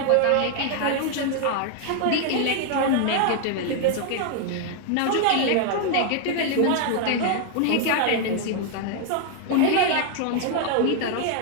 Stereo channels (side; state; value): both; different; correlation 0.00